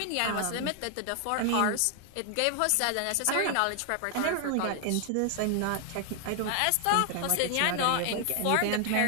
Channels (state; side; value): different; both; correlation 0.00